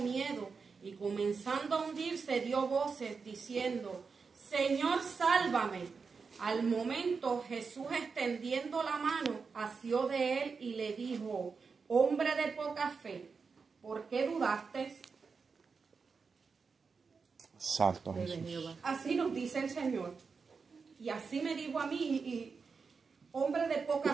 y comenzando a hundirse dio voces diciendo, Señor, sálvame. Al momento Jesús extendiendo la mano asió de él y le dijo, hombre de poca fe, ¿por qué dudaste? Santo Jesús. Así nos dice el Señor. Y así me dijo a mí, y hombre de poca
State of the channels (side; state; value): left; quieter; 5.1 dB